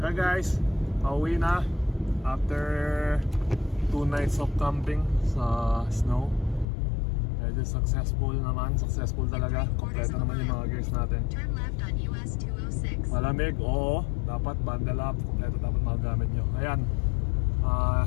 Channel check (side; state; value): right; drops out; at 6.7 s